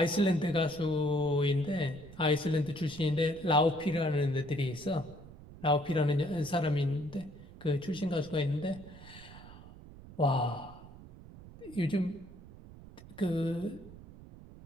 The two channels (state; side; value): noise; right; rumble, 17 dB below the sound